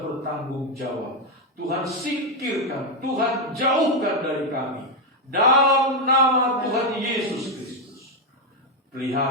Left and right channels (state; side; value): normal; both; correlation 0.04